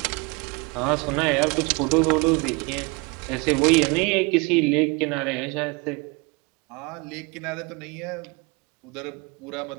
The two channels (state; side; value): quieter; left; 28.2 dB